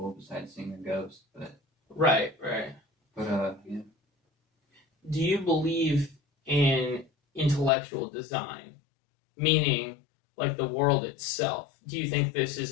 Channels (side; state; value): right; drops out; at 7.7 s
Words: besides seeing a ghost, but right. But yeah. Do you believe in intellectual design? Meaning, like, the world itself. Do you think this